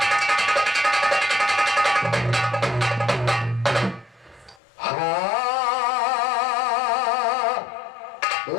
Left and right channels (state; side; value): drops out; right; at 4.6 s